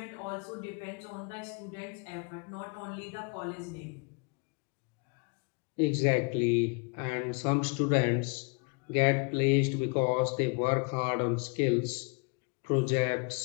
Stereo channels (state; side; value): quieter; right; 34.0 dB